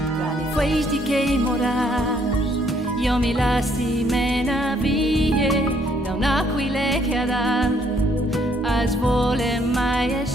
Tra le festi che morars, io mi lasci mena vie, da un'aquile che ad as vole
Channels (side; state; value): both; normal; correlation 0.67